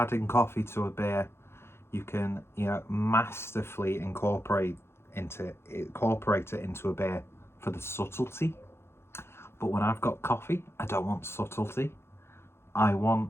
coffee to a beer, you can, masterfully incorporate it into a beer for the subtlety. But when I've got coffee, I don't want subtlety. I want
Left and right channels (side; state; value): right; late; 0.12 ms